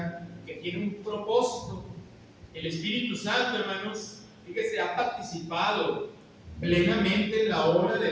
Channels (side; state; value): both; identical; correlation 1.00